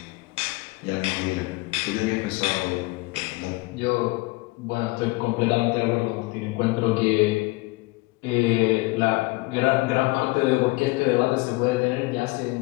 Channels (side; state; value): right; quieter; 23.3 dB